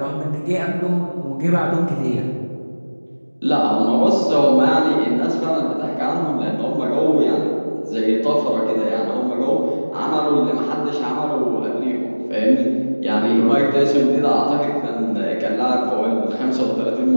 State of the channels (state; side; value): inverted; both; correlation -1.00